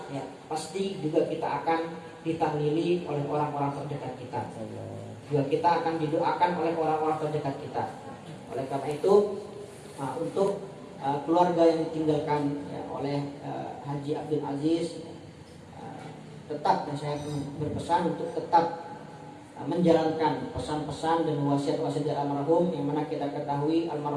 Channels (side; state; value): both; identical; correlation 1.00